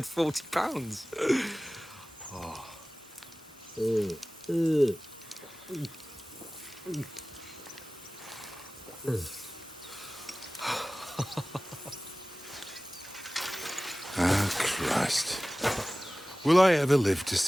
40 pounds. Oh. Ah, Christ. Will I ever live to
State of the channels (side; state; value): both; normal; correlation 0.97